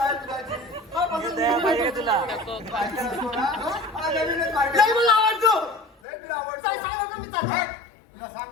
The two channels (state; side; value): drops out; right; at 5.9 s